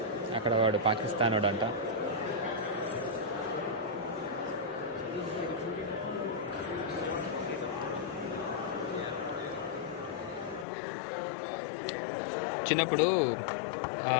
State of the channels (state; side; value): drops out; right; at 10.7 s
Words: అక్కడ వాడు పాకిస్తాన్ వాడు అంట. చిన్నప్పుడు